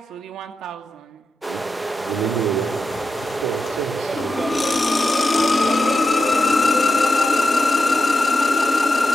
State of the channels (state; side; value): normal; both; correlation 0.88